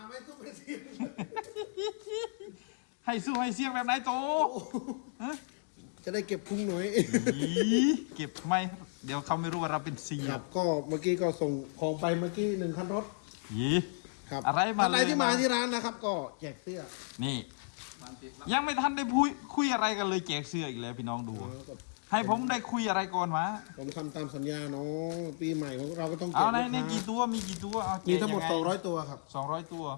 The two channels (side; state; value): right; silent; digital silence